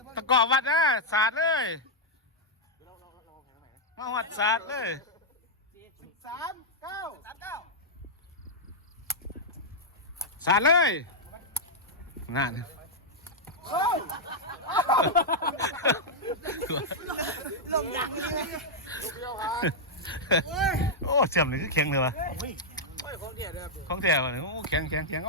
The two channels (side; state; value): both; normal; correlation -0.06